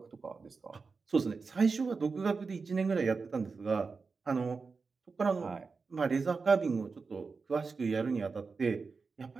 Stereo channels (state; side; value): quieter; left; 4.6 dB